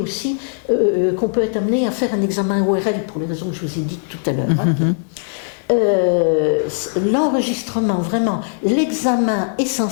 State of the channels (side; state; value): right; silent; 66 dB below the other